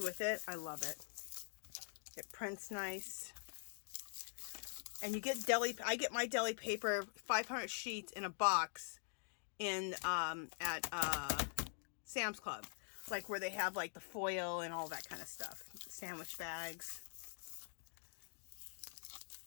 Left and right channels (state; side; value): silent; right; digital silence